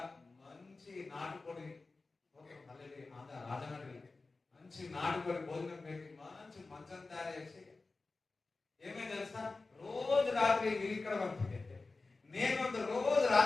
మంచి నాటుకోడి రాజమండ్రి మంచి నాటుకోడి భోజనం పెట్టి మంచి మంచం తయారు చేసి ఏమైంది తెలుసా, రోజు రాత్రి మీరు ఇక్కడ పంపితే నేను రోజు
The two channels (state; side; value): quieter; right; 3.7 dB